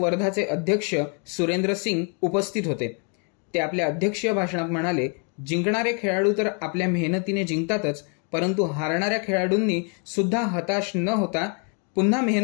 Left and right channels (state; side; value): quieter; right; 38.2 dB